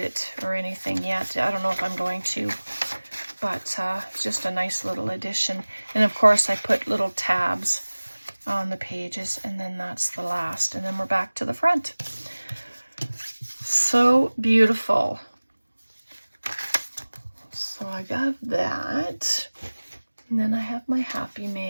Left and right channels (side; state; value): both; inverted; correlation -1.00